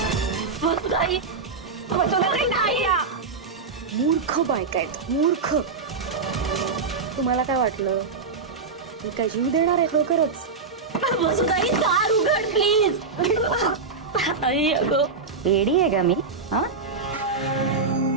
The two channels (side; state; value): left; quieter; 4.6 dB